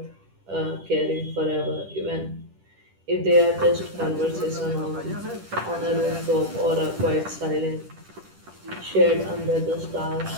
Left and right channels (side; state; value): left; late; 10 ms